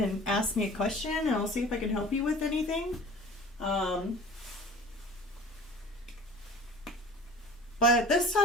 ask me a question, and I'll see if I can help you with anything. But this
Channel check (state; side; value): normal; both; correlation 0.43